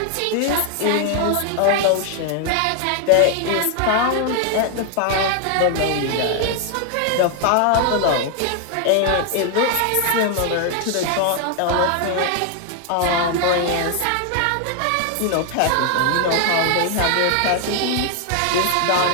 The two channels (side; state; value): both; different; correlation 0.00